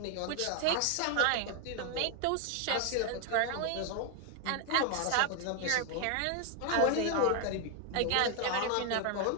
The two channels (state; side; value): different; both; correlation 0.01